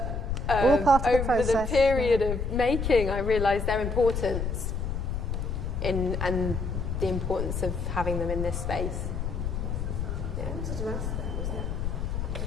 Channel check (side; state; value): left; noise; rumble, 2 dB below the sound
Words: all part of the over process. the period of making, I realised their importance and the importance of having them in this space. I wanted to ask that,